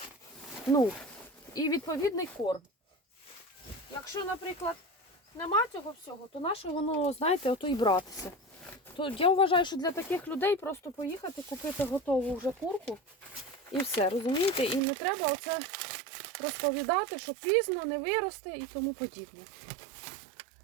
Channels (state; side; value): drops out; left; at 14.8 s